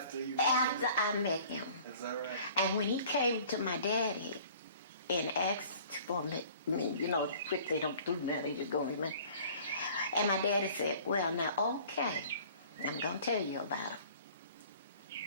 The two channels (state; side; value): inverted; both; correlation -0.50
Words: you met After him? I met him. Is that right? And when he came to my daddy and asked for me, quick, they don't do that, they just go with me. And my daddy said, well, now, okay, I'm going to tell you about him.